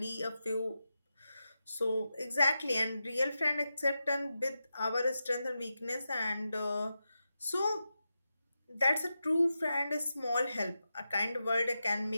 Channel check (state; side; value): inverted; both; correlation -0.90